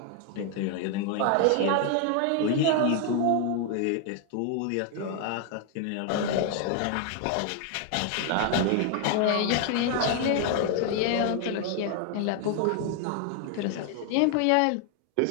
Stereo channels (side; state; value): both; different; correlation 0.00